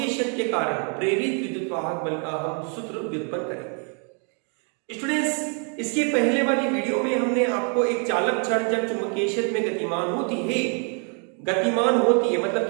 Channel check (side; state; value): left; quieter; 39.8 dB